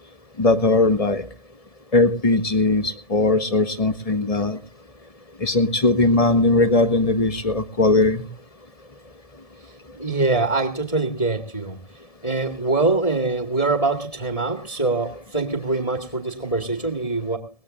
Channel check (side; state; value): right; late; 1.7 ms